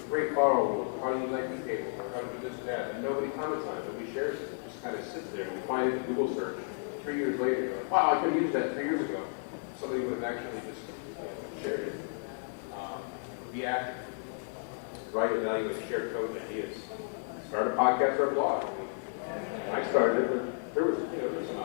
great firewall rules, or how to use IP tables, or how to do this or that, and nobody comments on it, nobody shares it. It just kind of sits there, and you find it in a Google search, you know, 3 years later, and you're like, wow, I could have used that 3 years ago if somebody would have actually just, you know, shared it. You know, be active, write, evaluate, share code and ideas. Start a podcast or a blog. I mean, when I started it, there was, you know, there's some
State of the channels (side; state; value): right; silent; digital silence